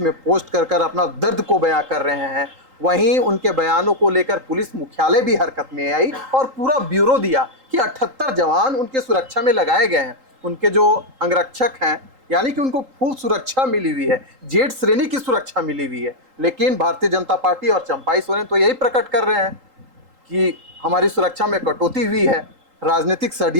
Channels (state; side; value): late; left; 3.8 ms